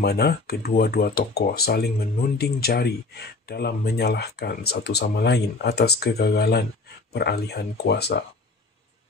kedua-dua tokoh saling menunding jari dalam menyalahkan satu sama lain atas kegagalan peralihan kuasa.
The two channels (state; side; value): quieter; right; 3.5 dB